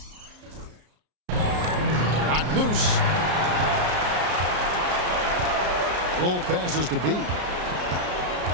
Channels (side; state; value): left; late; 33 ms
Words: Loose. Roll passes to B.